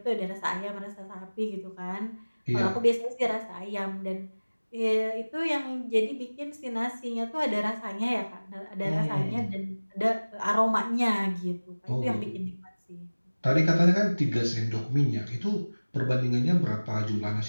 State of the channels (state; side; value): inverted; both; correlation -1.00